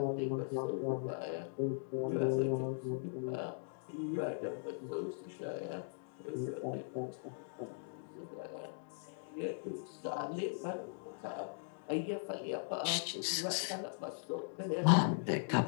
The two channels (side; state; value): right; silent; digital silence